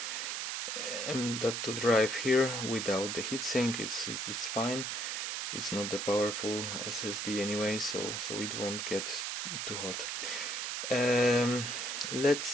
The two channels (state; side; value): noise; right; hiss, 2 dB below the sound